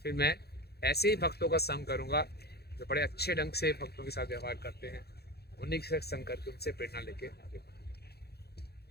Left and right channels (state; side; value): late; right; 0.47 ms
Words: फिर मैं ऐसे ही भक्तों का संग करूँगा जो बड़े अच्छे ढंग से भक्तों के साथ व्यवहार करते हैं, उन्हीं के साथ संग करके उनसे प्रेरणा लेके आगे बढ़ें।